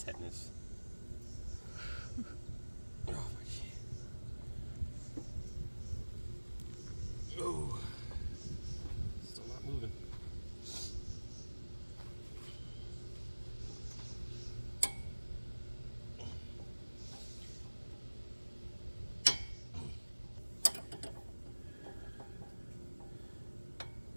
Oh my shit. Oh, still not moving.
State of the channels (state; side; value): inverted; both; correlation -1.00